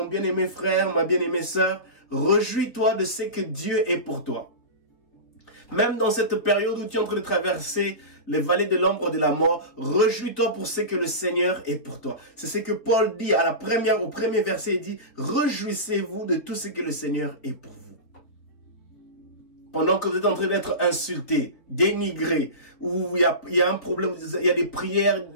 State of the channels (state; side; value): late; right; 4.3 ms